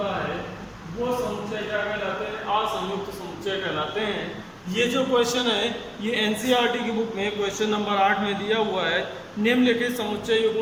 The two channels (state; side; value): identical; both; correlation 1.00